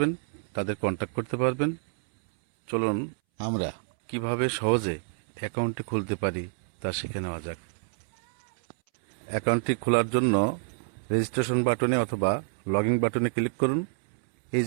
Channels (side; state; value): left; silent; 60 dB below the other